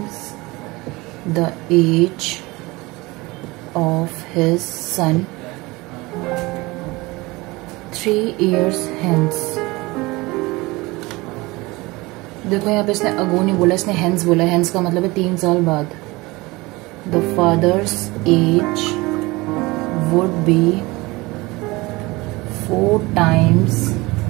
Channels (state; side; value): quieter; left; 22.4 dB